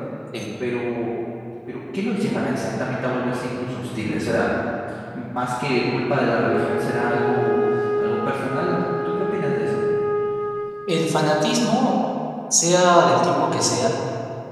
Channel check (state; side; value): identical; both; correlation 1.00